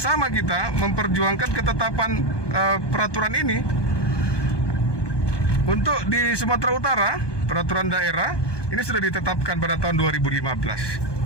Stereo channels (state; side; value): late; right; 1.2 ms